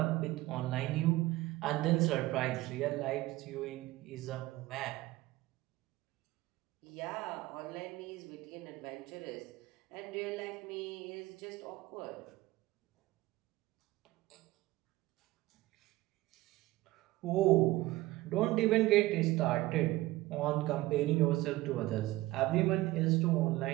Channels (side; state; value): left; quieter; 18.2 dB